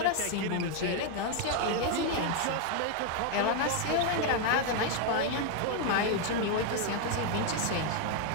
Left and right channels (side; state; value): both; different; correlation 0.01